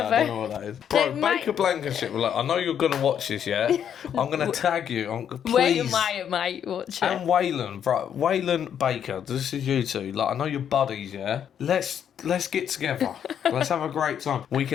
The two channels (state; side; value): quieter; right; 8.9 dB